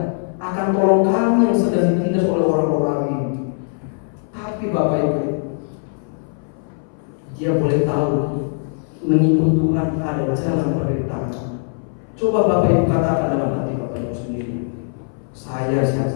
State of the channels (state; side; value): silent; right; 61 dB below the other